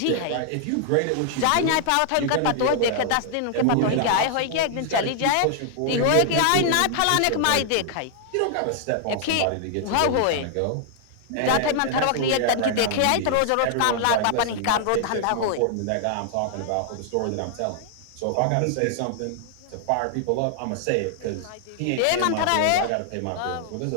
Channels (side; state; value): both; different; correlation 0.00